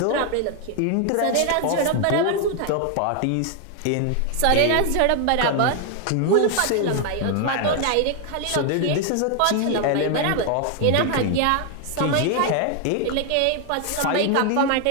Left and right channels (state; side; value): different; both; correlation 0.01